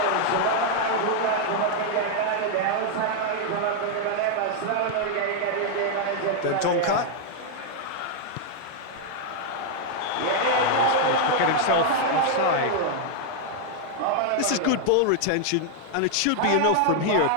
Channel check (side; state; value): both; different; correlation 0.00